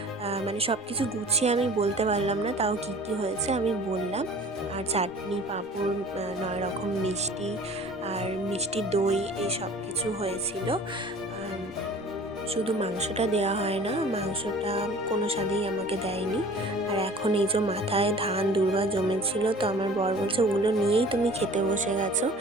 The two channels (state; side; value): normal; both; correlation 0.46